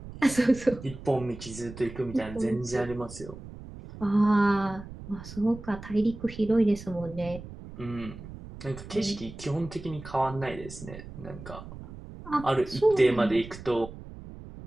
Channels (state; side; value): noise; right; rumble, 14 dB below the sound